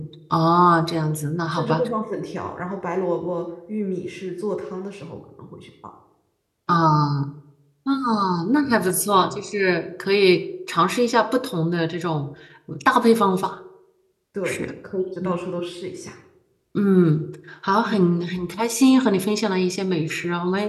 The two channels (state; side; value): identical; both; correlation 1.00